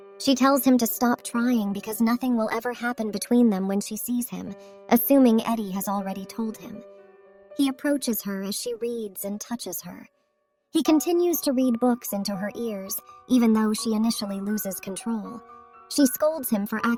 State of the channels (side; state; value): both; identical; correlation 1.00